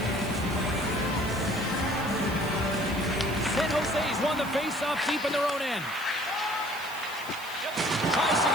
San Jose's won the face-off deep in their own end. Tries to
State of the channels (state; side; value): noise; right; hiss, 16 dB below the sound